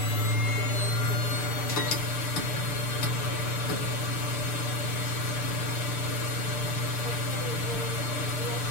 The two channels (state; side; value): late; right; 6.6 ms